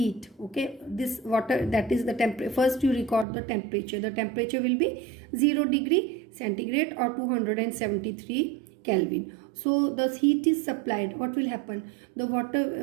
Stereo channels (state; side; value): drops out; left; at 3.2 s